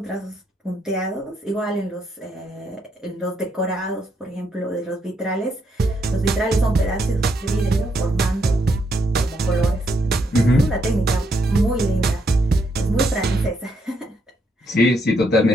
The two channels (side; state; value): both; normal; correlation 0.76